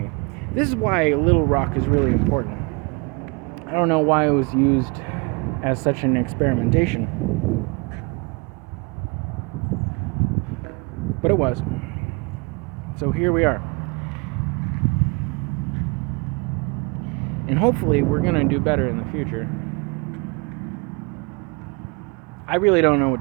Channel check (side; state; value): left; quieter; 29.8 dB